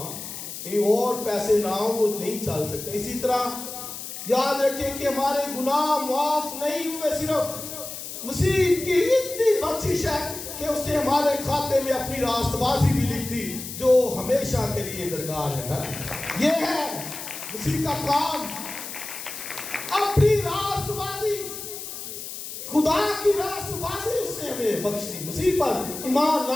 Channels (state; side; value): noise; left; hiss, 9 dB below the sound